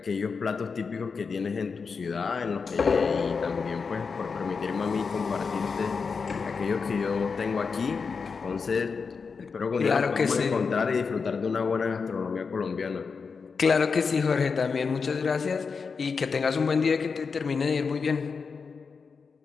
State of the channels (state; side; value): quieter; right; 5.2 dB